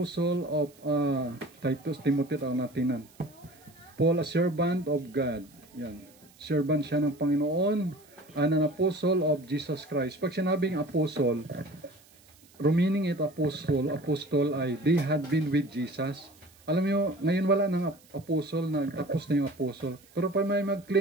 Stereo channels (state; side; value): noise; right; hiss, 28 dB below the sound